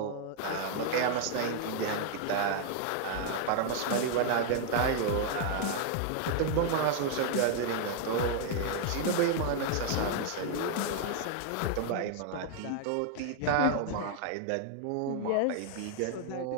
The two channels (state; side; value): different; both; correlation 0.00